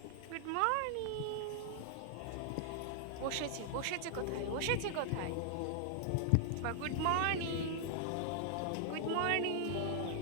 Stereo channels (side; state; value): both; different; correlation 0.00